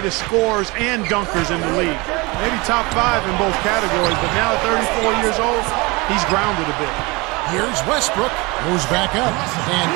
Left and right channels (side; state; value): left; quieter; 25.2 dB